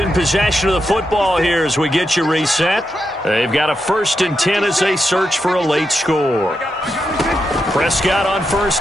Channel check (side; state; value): both; normal; correlation 0.85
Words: possession of the football here as we get you reset. They've got a 1st and 10 as they search for a late score. Prescott on 1st